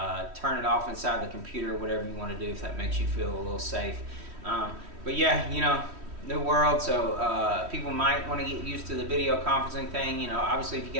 turn it off inside the computer, whatever you want to do if that makes you feel a little safe. But yeah, you know, new world, so people might want to get used to the video conferencing thing. You know, obviously if you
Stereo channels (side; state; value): left; late; 3.1 ms